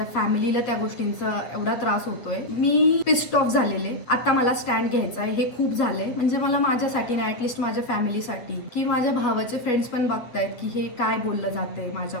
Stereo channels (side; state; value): right; late; 8.5 ms